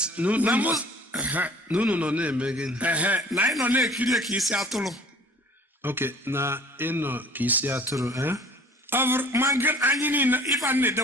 no na-eme gị na anyị nọ na-ekiri ka isi atụrụ. Okay, na ịnọ ka isi atụrụ ma anyị niile ife a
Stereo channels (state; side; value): normal; both; correlation 0.48